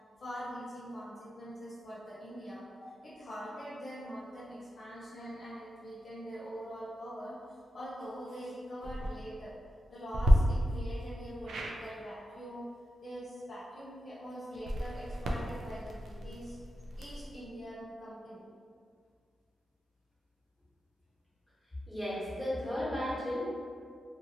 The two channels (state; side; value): normal; both; correlation 0.91